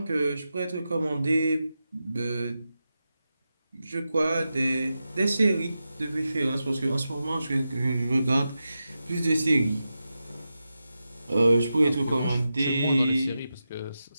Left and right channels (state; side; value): inverted; both; correlation -0.91